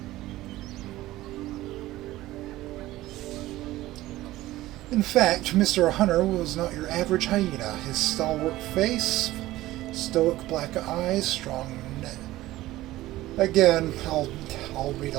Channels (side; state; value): left; quieter; 16.5 dB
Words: In fact, Mr. Hunter was not your average hyena. His stalwart face, stoic black eyes, strong neck. Again, I'll read